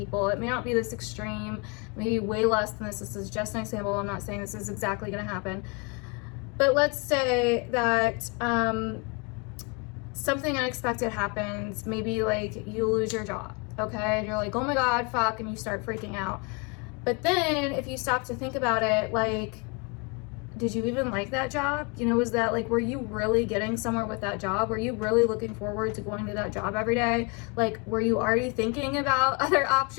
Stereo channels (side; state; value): right; quieter; 30.9 dB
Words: It may not be this extreme, maybe way less than this. This is just an example. I'm not saying this is exactly going to happen. But let's say that something unexpected happens. Maybe like you lose your job, okay? And you're like, oh my God, fuck, and you start freaking out. But then if you stop to think about it, like, did you even like that job? You know, was that like, were you really getting somewhere with that job? Were you really looking forward to going to that job every day? Like, were you already thinking about other